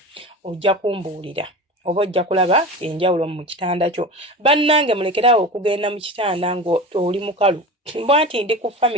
Ojja kumbuulira oba ojja kulaba enjawulo mu kitanda kyo. Bannange mulekeraawo okugenda mu kitanda ng'oli mukalu. Bw'anti ndi ku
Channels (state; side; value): normal; both; correlation 0.30